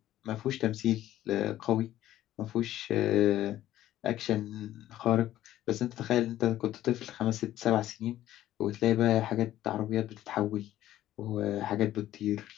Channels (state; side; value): quieter; right; 13.5 dB